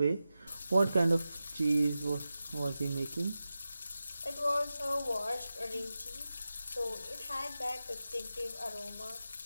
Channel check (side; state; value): both; inverted; correlation -0.93